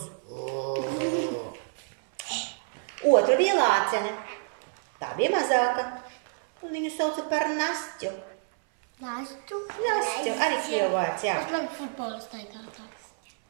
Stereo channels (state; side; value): silent; left; 59 dB below the other